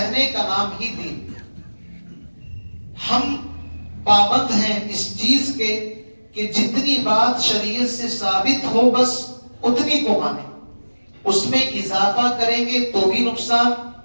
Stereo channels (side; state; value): both; inverted; correlation -1.00